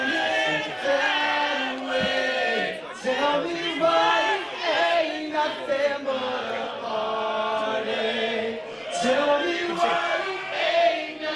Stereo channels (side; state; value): both; identical; correlation 1.00